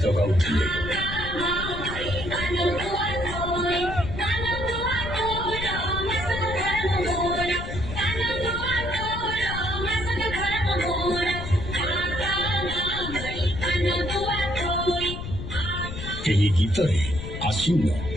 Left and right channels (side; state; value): left; noise; rumble, 7 dB below the sound